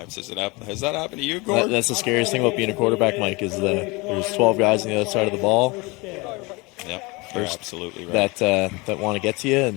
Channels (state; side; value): quieter; right; 25.5 dB